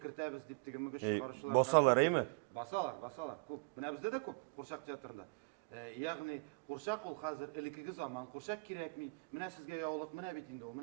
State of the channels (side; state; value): left; quieter; 31.6 dB